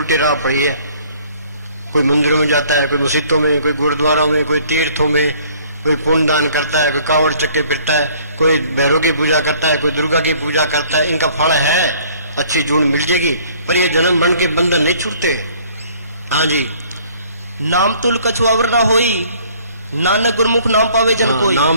राह पड़ी है, कोई मंदिरों में जाता है, कोई मस्जिदों में, कोई गुरुद्वारों में, कोई तीर्थों में, कोई पुण्य दान करता है, कोई कावड़ चक्के फिरता है, कोई भैरव की पूजा करता है, कोई दुर्गा की पूजा करता है। इनका फल है, अच्छी जून मिल जाएगी, पर ये जन्म बन के बंधन नहीं छूटते हैं। हाँ जी, नाम तुल कछुआवर न होई, नानक गुरमुख नाम पावे जन कोई।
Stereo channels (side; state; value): both; inverted; correlation -0.56